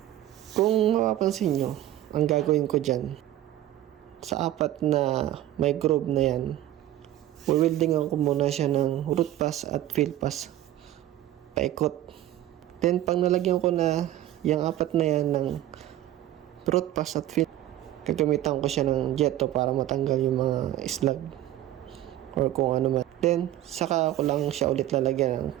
Kung mapapansin nyo, ang gagawin ko dyan, sa 4 na may groove na yan, weldingan ko muna siya ng root pass at fill pass. Paikot. Then, pag nalagyan ko na yung 4 na yan ng root pass at fill, gagamitan ko siya ng jetto para matanggal yung mga slag or kung ano man. Then, saka ko lang siya ulit lalagyan ng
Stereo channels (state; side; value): quieter; left; 13.7 dB